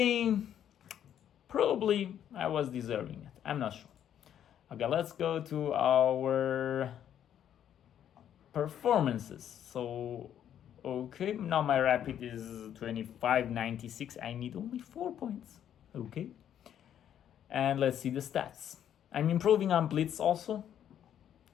Probably I was deserving it. I'm not sure. Okay, let's go to our performances. So Okay, now my rapid is 25.96. I need only 4 points. Okay. And let's see the stats. I'm improving on Blitz also.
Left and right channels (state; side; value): quieter; right; 10.0 dB